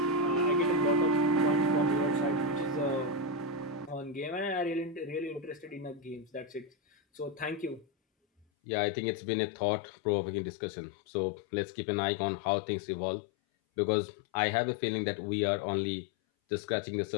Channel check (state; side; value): drops out; right; at 8.5 s